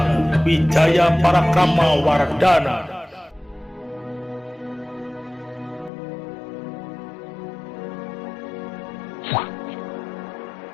Wijaya Parakrama Wardana.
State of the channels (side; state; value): right; drops out; at 5.9 s